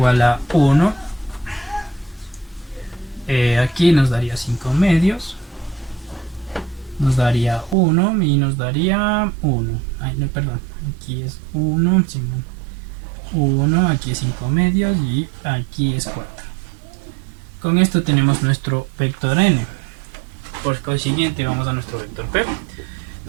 a 1. Aquí nos daría 5 medios, nos daría 1 y nos daría 1. Ay, no, perdón, aquí es 1, 1, aquí es 5 medios y aquí es 4. Con esto tenemos nuestro vector n. Por consiguiente vamos a nuestro vector p.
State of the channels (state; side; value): drops out; left; at 7.8 s